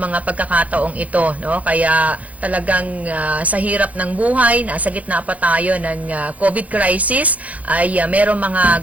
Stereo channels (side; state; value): left; late; 0.070 ms